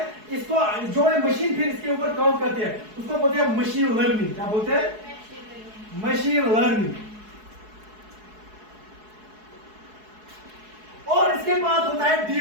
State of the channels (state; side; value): late; left; 4.7 ms